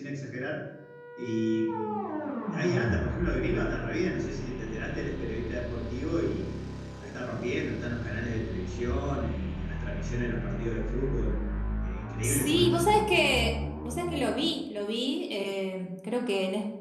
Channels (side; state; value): both; identical; correlation 1.00